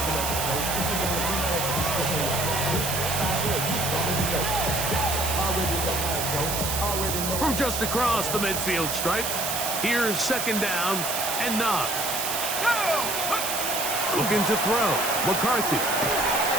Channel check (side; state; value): right; noise; hiss, 2 dB below the sound